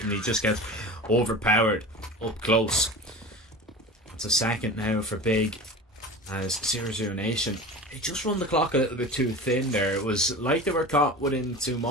and he just gets overpowered up close. It's a second now for Big as 0-0 Nation. They just run the clock a little bit too thin there. It was like they were caught within two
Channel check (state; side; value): normal; both; correlation 0.34